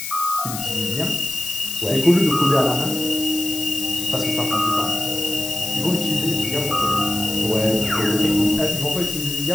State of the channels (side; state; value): left; noise; hiss, 6 dB below the sound